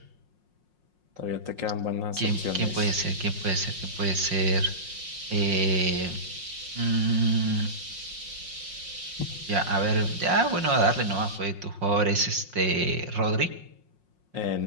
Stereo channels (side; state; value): left; late; 5.5 ms